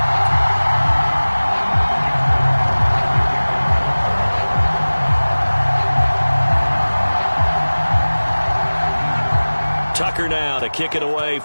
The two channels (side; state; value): both; inverted; correlation -1.00